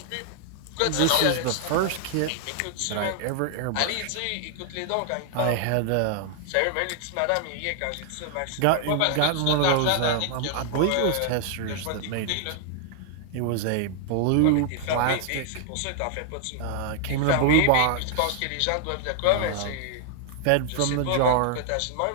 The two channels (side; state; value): both; different; correlation 0.00